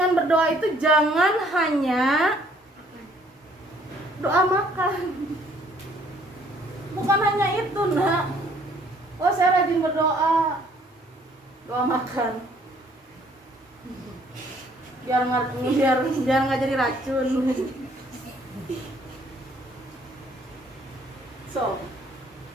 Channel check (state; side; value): normal; both; correlation 0.62